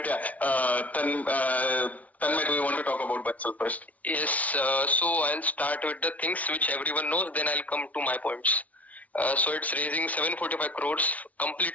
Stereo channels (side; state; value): right; late; 0.070 ms